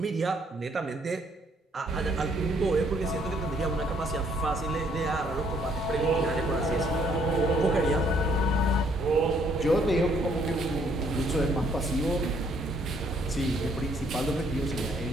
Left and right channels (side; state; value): both; normal; correlation 0.66